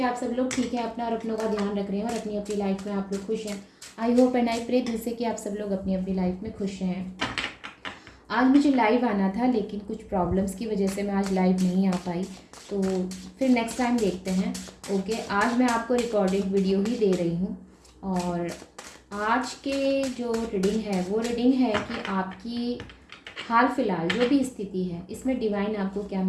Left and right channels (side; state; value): both; identical; correlation 1.00